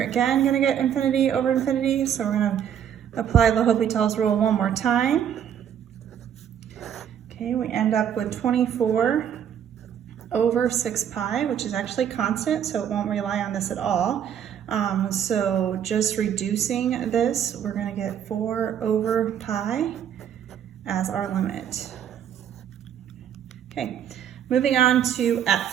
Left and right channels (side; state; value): left; quieter; 9.2 dB